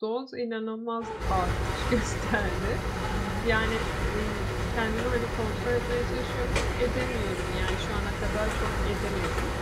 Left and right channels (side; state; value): both; identical; correlation 1.00